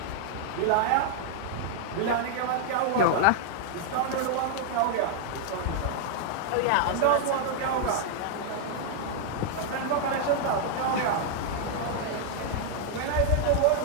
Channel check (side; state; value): both; different; correlation 0.00